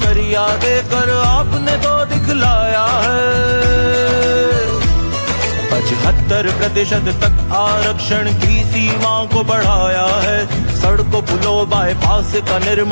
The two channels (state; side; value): inverted; both; correlation -1.00